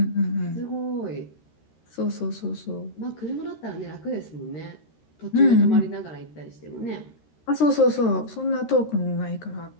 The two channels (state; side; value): late; right; 13 ms